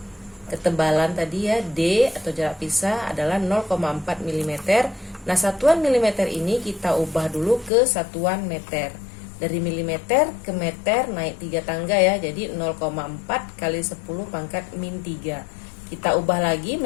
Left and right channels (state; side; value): drops out; right; at 7.7 s